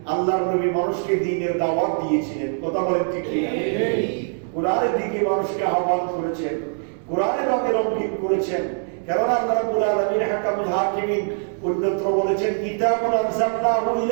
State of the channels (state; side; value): silent; left; 64 dB below the other